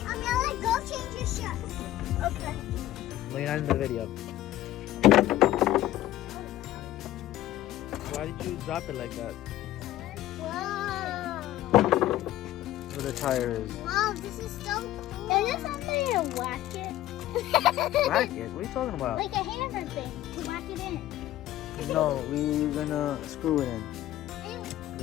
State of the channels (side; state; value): right; quieter; 14.3 dB